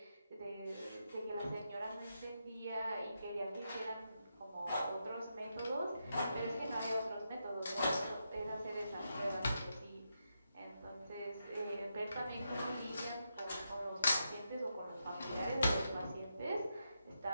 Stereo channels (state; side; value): inverted; both; correlation -0.84